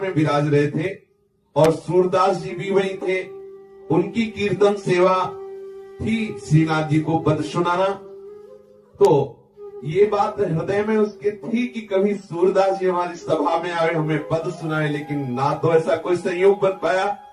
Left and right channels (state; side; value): identical; both; correlation 1.00